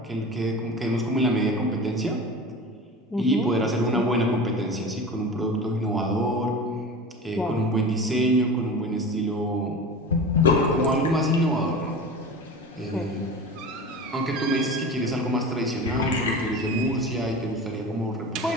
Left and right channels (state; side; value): normal; both; correlation 0.32